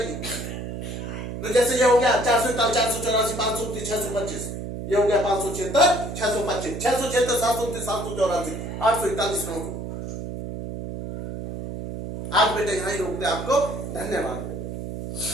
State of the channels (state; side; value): noise; right; hum, 7 dB below the sound